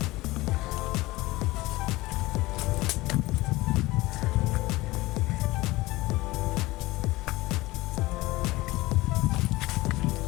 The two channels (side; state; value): right; quieter; 19.8 dB